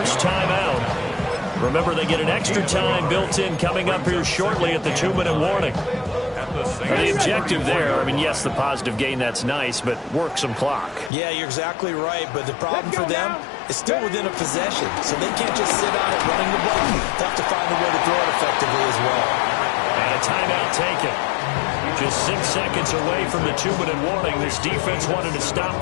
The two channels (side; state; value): right; drops out; at 11.1 s